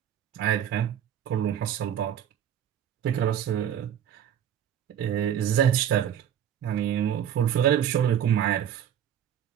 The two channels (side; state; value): left; quieter; 9.8 dB